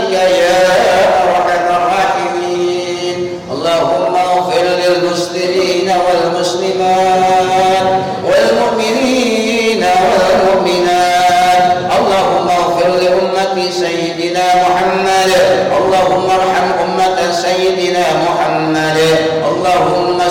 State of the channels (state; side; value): identical; both; correlation 1.00